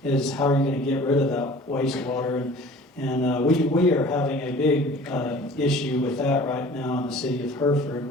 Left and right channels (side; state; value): both; normal; correlation 0.46